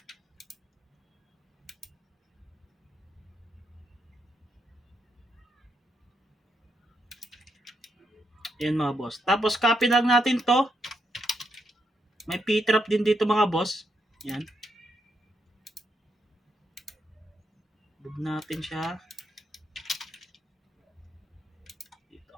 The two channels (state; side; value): normal; both; correlation 0.80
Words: Yan mga boss. Tapos copy lang natin to. May P-trap din dito mga boss. Yan. Move natin siya. Dito.